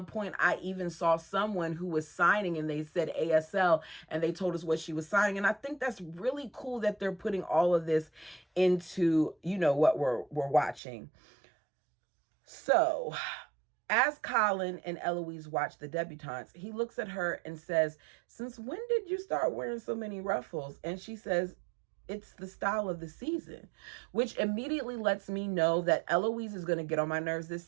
point, I even saw someone who was signing and they said ASL and they told us what she was signing. And I think that's really cool that they're putting all of this into, what we're watching. So as Colin and Eloise watch the debutantes, he looks at her and says, since when did you start wearing so many ruffles? And she says, it's the style of the season, which immediately lets me know that Eloise is going to get on my nerves this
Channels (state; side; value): drops out; left; at 10.8 s